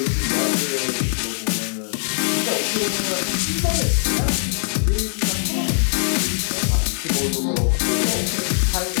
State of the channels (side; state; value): right; silent; digital silence